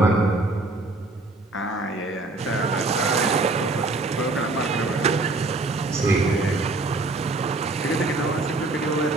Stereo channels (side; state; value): left; quieter; 3.1 dB